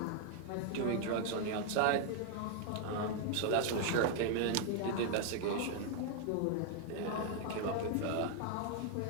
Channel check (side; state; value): both; different; correlation 0.00